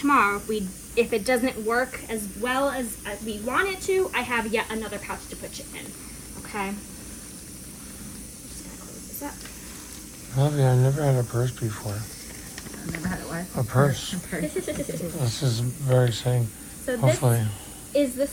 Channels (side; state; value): both; identical; correlation 1.00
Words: If it doesn't work as well as we want it to, I have yet another pouch to put it in. Okay. Just gonna close this up. Lovely. I never had a purse before. I've never had it what? A purse. This is very exciting. So this Hopefully.